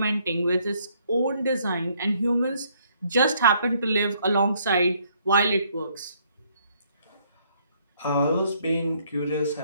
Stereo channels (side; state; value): both; inverted; correlation -0.67